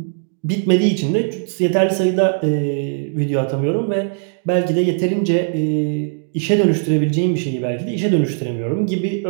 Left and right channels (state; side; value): silent; left; digital silence